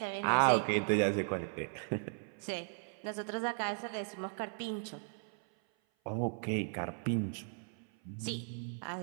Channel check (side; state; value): left; silent; 53 dB below the other